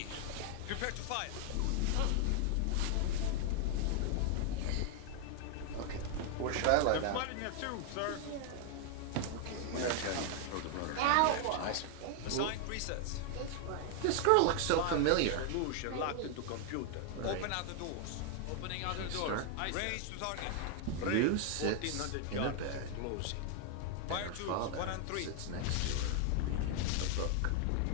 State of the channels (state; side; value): different; both; correlation 0.00